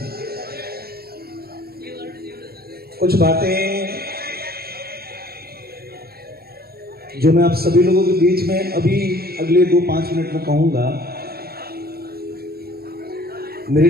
कुछ बातें जो मैं आप सभी लोगों के बीच में अभी अगले 2-5 मिनट में कहूंगा, मेरे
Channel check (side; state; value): left; late; 0.45 ms